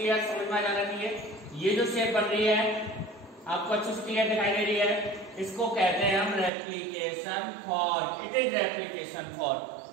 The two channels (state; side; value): drops out; left; at 6.5 s